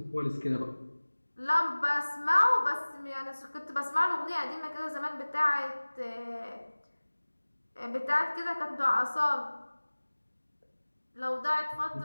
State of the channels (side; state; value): both; inverted; correlation -1.00